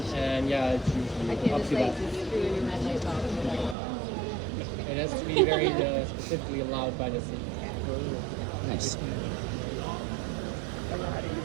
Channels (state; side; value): drops out; left; at 3.8 s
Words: yeah, it's I usually can't up just to like that. screw your red light box. It has to be very specifically allowed by the city. Nice.